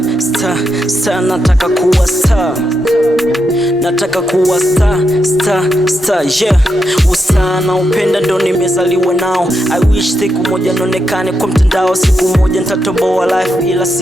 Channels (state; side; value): normal; both; correlation 0.84